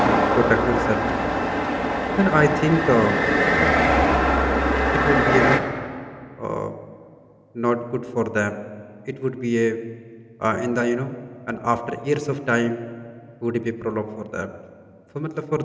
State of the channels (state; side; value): identical; both; correlation 1.00